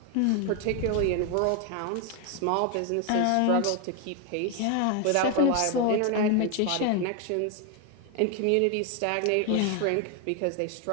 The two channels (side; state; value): both; different; correlation 0.01